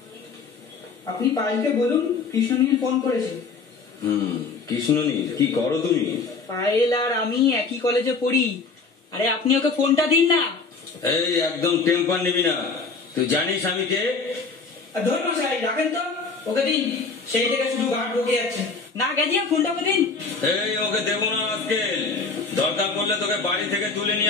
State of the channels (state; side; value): quieter; right; 4.5 dB